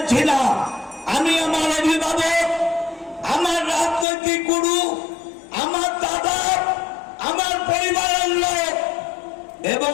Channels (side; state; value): right; drops out; at 4.0 s